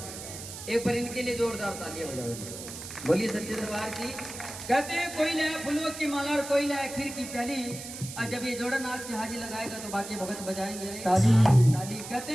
एक बार इनके लिए जोरदार तालियां बजाओ। बोलिए सच्चे दरबार की। कहते हैं कोई लाए फूलों की माला और कोई लाए खीर की प्याली। और जब ये जोड़ा नाच की हाजी लगाएगा तो बाकी भगत बजाएंगे ताली। ताली। कहते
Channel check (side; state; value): right; noise; hiss, 11 dB below the sound